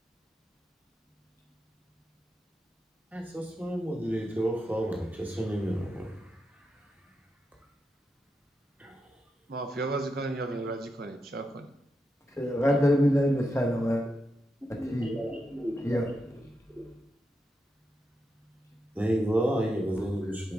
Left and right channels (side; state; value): both; normal; correlation 0.86